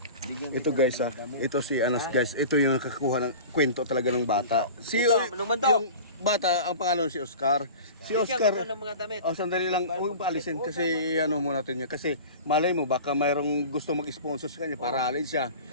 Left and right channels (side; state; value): both; inverted; correlation -0.36